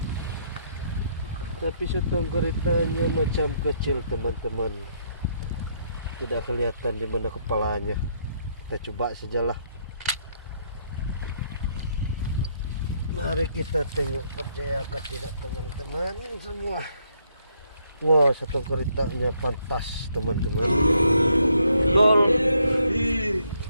Tapi setong keritanya macam kecil teman-teman, tidak kelihatan di mana kepalanya. Kita coba sajalah. Mari kita tengok, percayakah tidak teman-teman semua. Wah, setong keritanya pantas teman-teman. Gol.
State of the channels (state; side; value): inverted; both; correlation -0.72